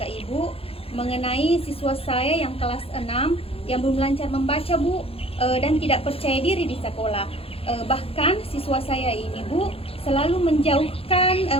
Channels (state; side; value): late; right; 0.27 ms